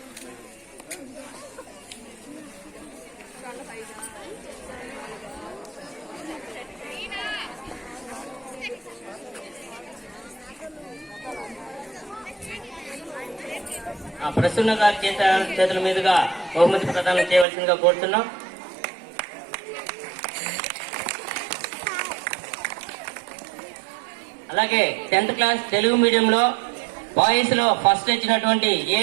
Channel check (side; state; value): left; drops out; at 17.4 s